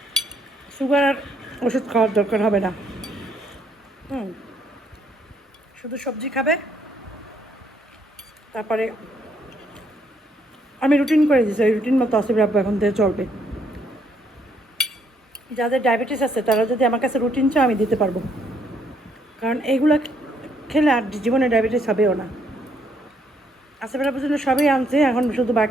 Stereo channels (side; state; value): both; normal; correlation 0.70